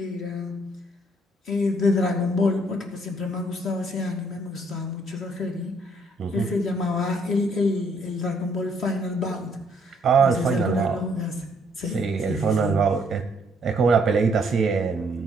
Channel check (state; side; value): normal; both; correlation 0.67